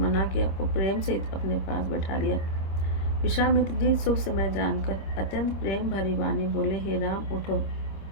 किया और प्रेम सहित अपने पास बैठा लिया। विश्वामित्र जी शुभ समय जानकर अत्यंत प्रेम भरी वाणी बोले, हे राम, उठो,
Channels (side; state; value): right; late; 26 ms